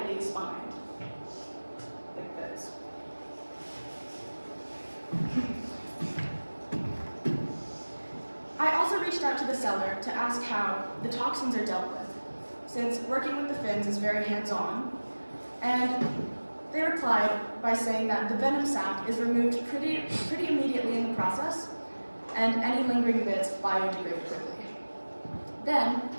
spined, like this. I also reached out to the seller to ask how the toxins are dealt with, since working with the fins is very hands-on, and they replied by saying that the venom sac is removed pretty immediately in the process, and any lingering bits biodegrade quickly. Then,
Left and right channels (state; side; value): inverted; both; correlation -1.00